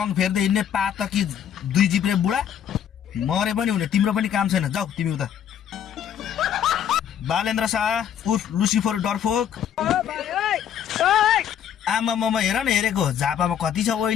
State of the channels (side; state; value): right; quieter; 9.1 dB